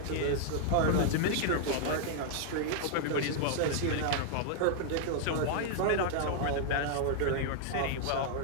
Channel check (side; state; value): both; different; correlation 0.00